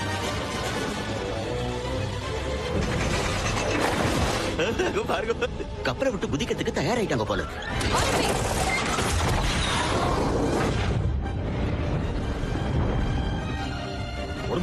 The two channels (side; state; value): both; identical; correlation 1.00